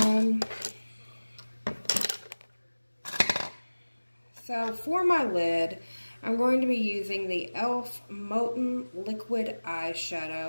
So for my lid, I'm going to be using the e.l.f. Molten Liquid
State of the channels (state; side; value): inverted; both; correlation -1.00